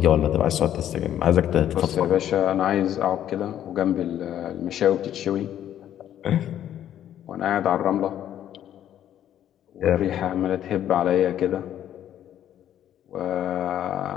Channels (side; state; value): right; quieter; 10.9 dB